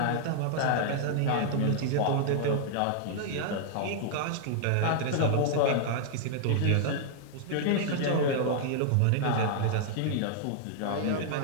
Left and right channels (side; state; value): both; different; correlation -0.01